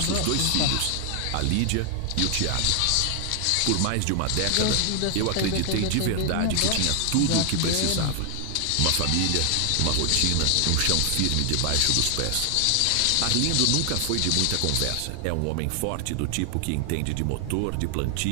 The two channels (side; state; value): both; different; correlation 0.00